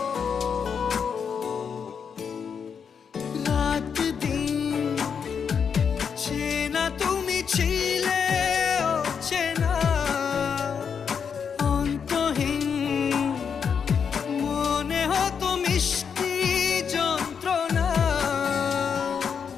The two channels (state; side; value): quieter; right; 6.7 dB